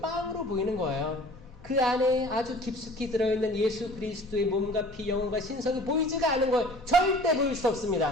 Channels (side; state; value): both; normal; correlation 0.47